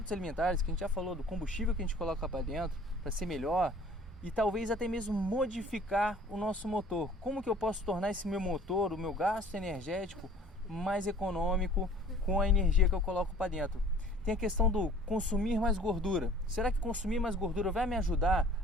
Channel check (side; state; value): both; normal; correlation 0.50